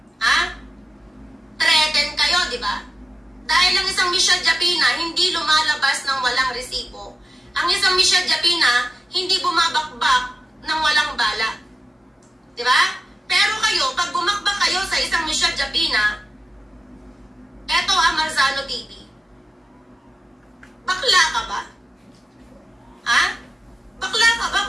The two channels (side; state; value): both; normal; correlation 0.92